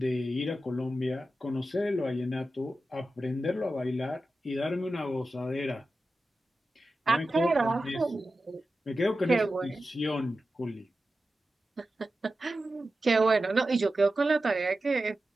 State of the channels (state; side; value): normal; both; correlation 0.92